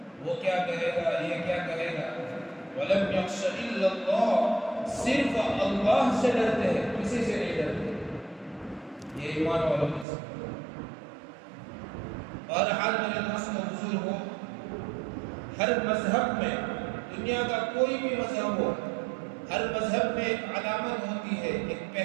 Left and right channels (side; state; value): left; drops out; at 10.1 s